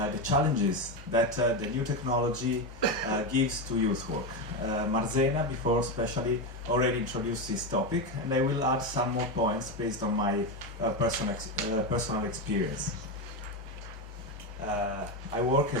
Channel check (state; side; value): normal; both; correlation 0.12